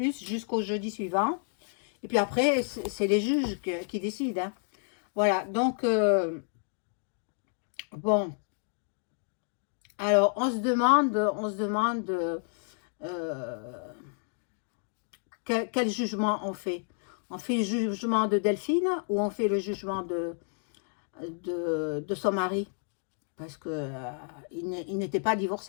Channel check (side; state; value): right; silent; 58 dB below the other